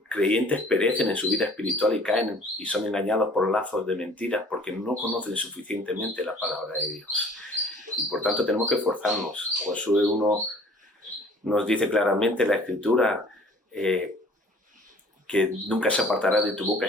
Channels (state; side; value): normal; both; correlation 0.52